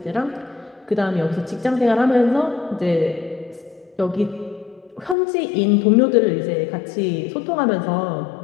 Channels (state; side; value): drops out; right; at 5.2 s